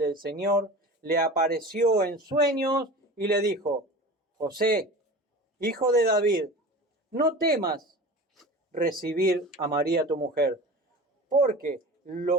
Señor le apareció en sueños y le dijo: José, hijo de David, no temas recibir a María tu mujer, porque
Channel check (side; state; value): both; normal; correlation 0.35